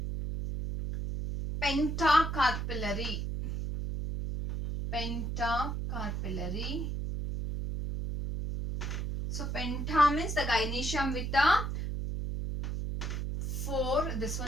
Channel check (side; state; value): right; noise; hum, 3 dB below the sound